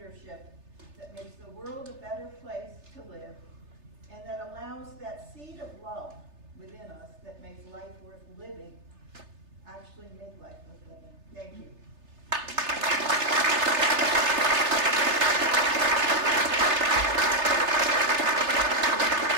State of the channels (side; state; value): left; late; 3.3 ms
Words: that makes the world a better place to live, and that allows that seed of love within us that makes life worth living actually make life worth living. Thank you.